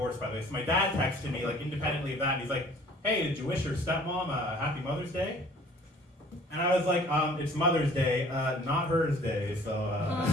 by the way. So my dad texted me, like, independently of that. And he's like, "Hey, did you wish your stepmom a happy Mother's Day?" And I was like, "It's Mother's Day, not hers day, so,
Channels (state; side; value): normal; both; correlation 0.52